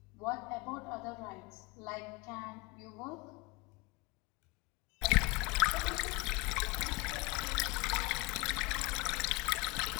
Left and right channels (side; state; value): right; quieter; 24.7 dB